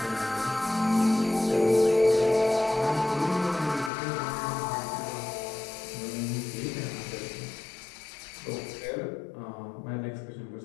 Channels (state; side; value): drops out; right; at 3.9 s